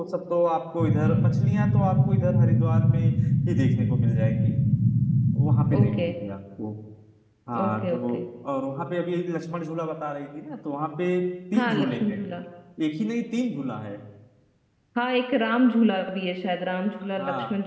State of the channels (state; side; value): identical; both; correlation 1.00